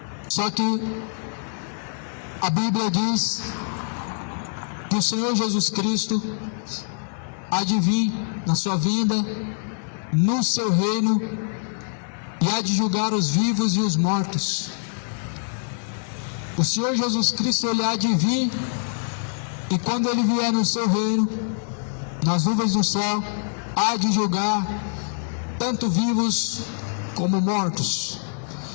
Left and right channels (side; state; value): right; silent; 56 dB below the other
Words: Só que a Bíblia diz que o Senhor Jesus Cristo há de vir na sua vinda, no seu reino, e há de julgar os vivos e os mortos. O Senhor Jesus Cristo, ele há de vir, e quando ele vier no seu reino, nas nuvens do céu, há de julgar tanto vivos como mortos.